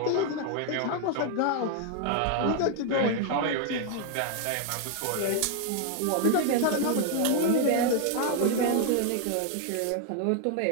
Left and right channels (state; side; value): different; both; correlation 0.00